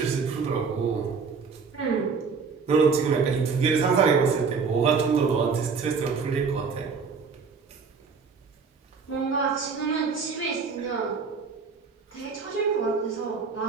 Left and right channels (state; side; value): quieter; left; 5.3 dB